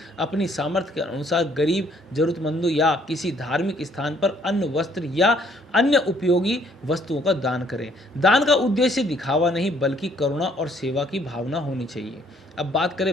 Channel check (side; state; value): both; normal; correlation 0.63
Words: अपनी सामर्थ्य के अनुसार गरीब, जरूरतमंदों या किसी धार्मिक स्थान पर अन्न, वस्त्र या अन्य उपयोगी वस्तुओं का दान करें। दान का उद्देश्य दिखावा नहीं बल्कि करुणा और सेवा की भावना होनी चाहिए। अब बात